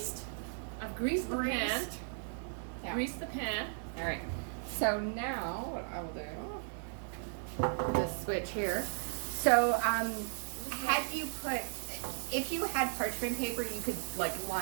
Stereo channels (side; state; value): left; silent; 54 dB below the other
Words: I've greased the pan. Yeah. Greased the pan. Alright. So now what I will do, this switch here. So had you put, if you had parchment paper, you could like